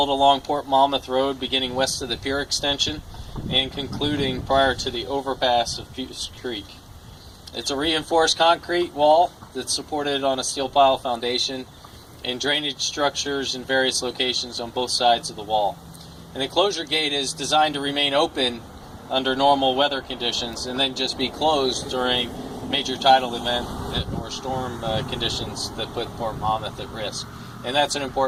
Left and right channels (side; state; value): both; identical; correlation 1.00